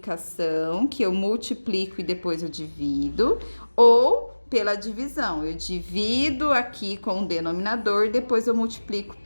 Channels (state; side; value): inverted; both; correlation -1.00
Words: que eu multiplico e depois eu divido, ou pela divisão. Eu divido aqui com o denominador, depois eu multiplico